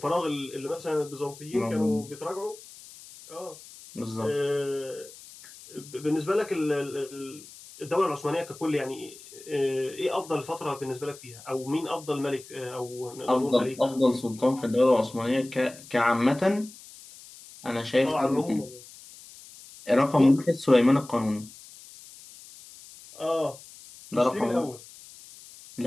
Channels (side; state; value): left; noise; hiss, 19 dB below the sound